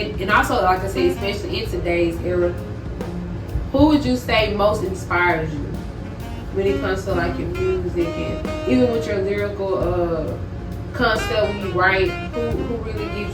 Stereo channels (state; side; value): identical; both; correlation 1.00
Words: also, like I said, especially in today's era, who would you say most inspires you when it comes to your music, and even with your lyrical concept when you write, who really